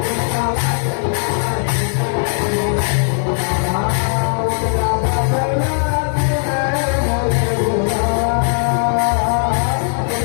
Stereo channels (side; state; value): right; silent; digital silence